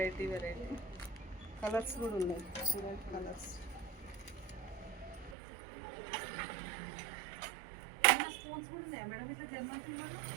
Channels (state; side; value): drops out; left; at 5.4 s